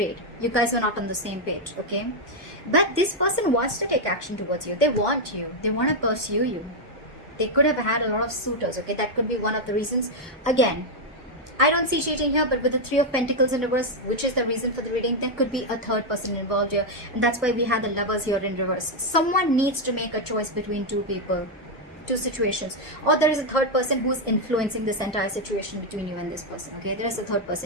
you guys are not on the same page, okay? But this person wants to take action towards you. They want you. They want to pursue you. They could have had a lot of suitors, okay? That could be one of the reasons. Again, I don't see cheating here, but with the Three of Pentacles in reverse, which is the reason for the reading, there could be a third person involved here. And that's why we have the Lovers here in reverse. Someone needs to make a choice between two people, two situations. Or there is a third person who's influencing this entire situation between you and this person, okay? There is a third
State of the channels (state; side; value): normal; both; correlation 0.01